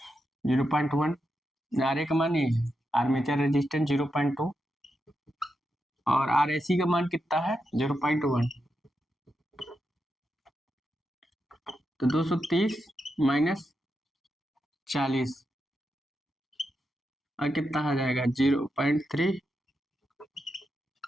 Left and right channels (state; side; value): normal; both; correlation 0.86